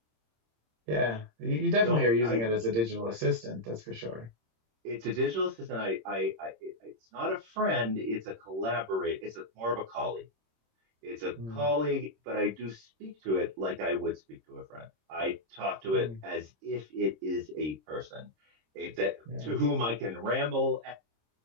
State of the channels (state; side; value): late; left; 26 ms